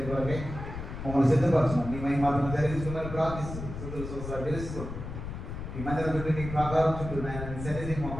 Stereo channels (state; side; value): noise; left; rumble, 8 dB below the sound